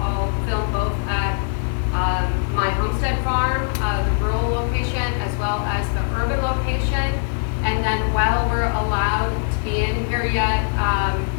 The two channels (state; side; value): silent; right; digital silence